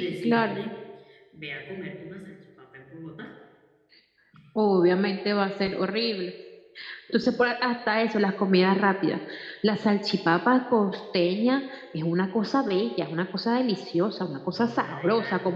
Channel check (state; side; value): identical; both; correlation 1.00